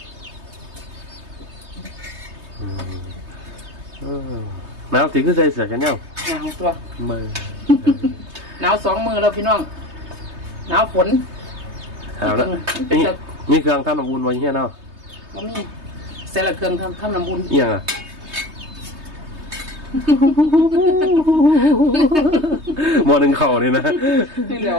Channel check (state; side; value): late; left; 3.2 ms